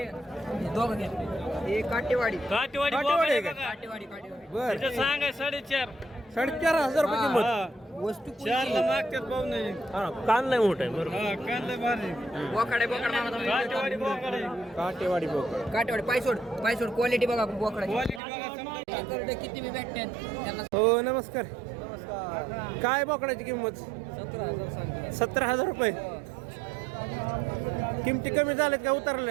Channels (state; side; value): drops out; left; at 18.2 s